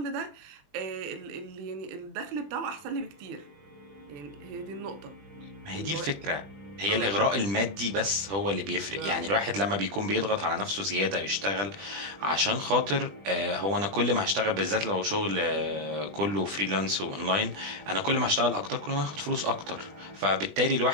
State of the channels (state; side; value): late; left; 20 ms